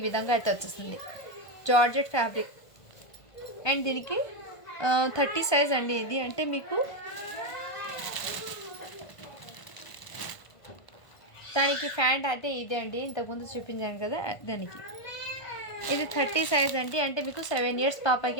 విధంగా అయితే వచ్చేస్తుంది జార్జెట్ ఫ్యాబ్రిక్. అండ్ దీనికి 30 సైజ్ అండి. ఇది అంటే మీకు దానికి ప్యాంట్ అయితే ఇదే అండి, ఇంతకుముందు చూపించాను కదా దానికి. ఇది 30 సైజ్ అండి, అంటే మీకు 7 ఇయర్స్ పాపకి,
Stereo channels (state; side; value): late; right; 1.5 ms